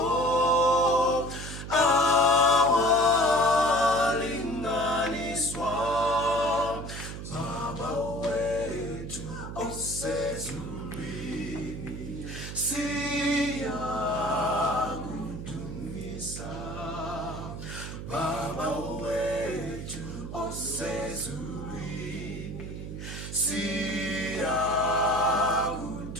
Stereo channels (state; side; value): noise; right; hum, 8 dB below the sound